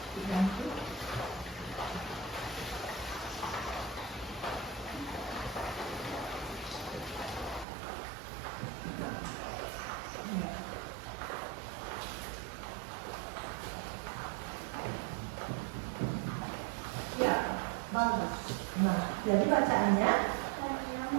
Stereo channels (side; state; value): left; drops out; at 7.7 s